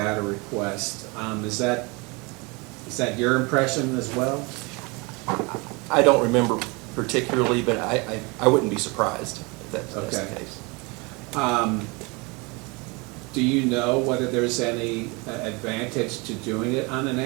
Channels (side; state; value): left; quieter; 27.9 dB